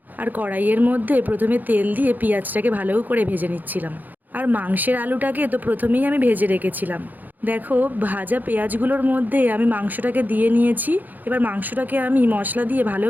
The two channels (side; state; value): left; late; 0.084 ms